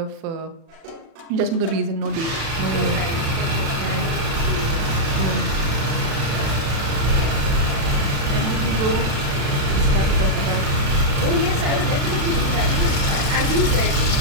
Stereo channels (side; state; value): left; late; 36 ms